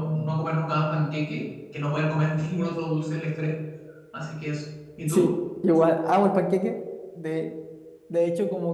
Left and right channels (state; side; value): identical; both; correlation 1.00